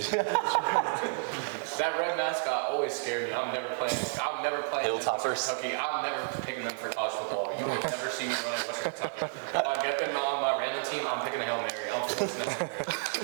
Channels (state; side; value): silent; left; digital silence